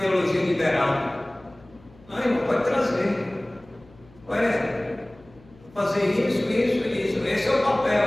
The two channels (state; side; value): noise; left; hum, 26 dB below the sound